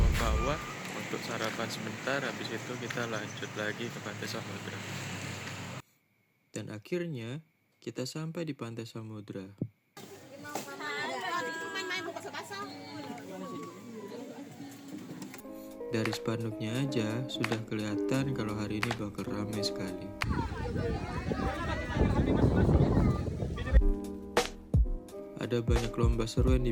untuk sarapan sebentar, habis itu kita lanjut lagi ke Pantai Samudra. Dan akhirnya kita sampai di Pantai Samudra. Dari spanduknya aja sudah kelihatan kalau hari ini bakal ramai sekali. Ada banyak lomba seru yang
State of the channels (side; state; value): both; identical; correlation 1.00